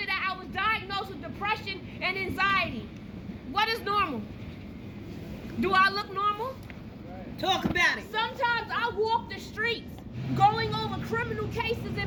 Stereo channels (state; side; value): identical; both; correlation 1.00